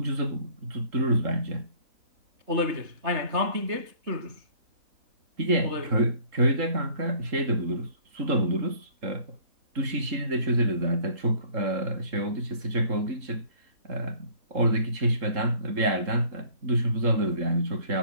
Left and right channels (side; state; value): left; late; 3.7 ms